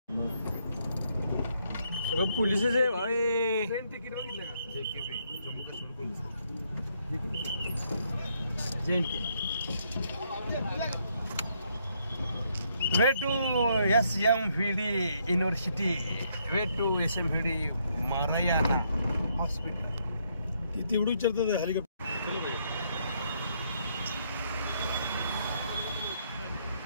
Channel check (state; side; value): inverted; both; correlation -0.73